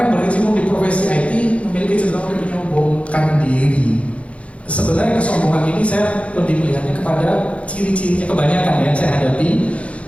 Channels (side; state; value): right; late; 0.063 ms